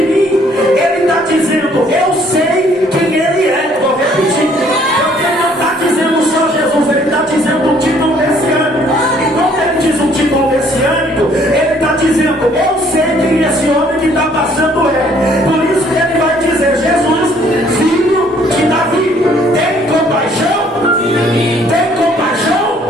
ele está dizendo: eu sei quem ele é. Vou repetir, porque ele não está dizendo só Jesus, ele está dizendo um título messiânico. E quando ele diz um título messiânico, ele está dizendo: eu sei quem esse homem que está passando é. Por isso que ele vai dizer: Jesus, filho de Davi, tem compaixão? Tem compaixão?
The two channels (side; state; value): both; normal; correlation 0.61